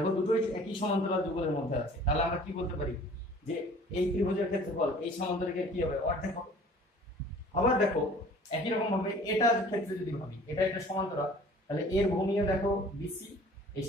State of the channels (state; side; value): normal; both; correlation 0.49